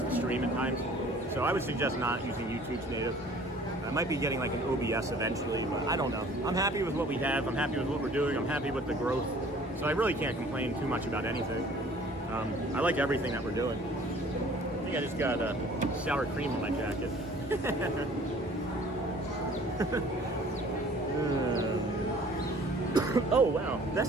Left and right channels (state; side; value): normal; both; correlation 0.51